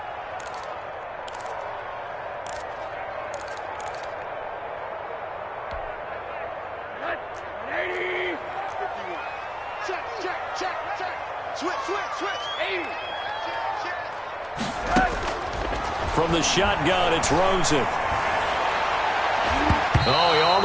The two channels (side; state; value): both; identical; correlation 1.00